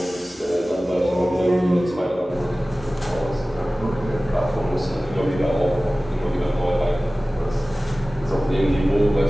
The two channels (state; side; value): normal; both; correlation 0.97